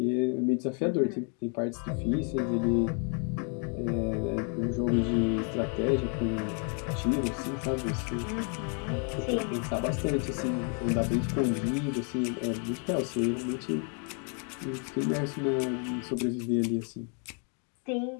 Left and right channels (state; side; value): quieter; right; 40.0 dB